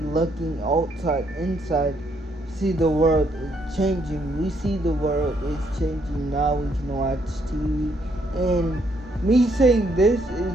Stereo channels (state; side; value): normal; both; correlation 0.72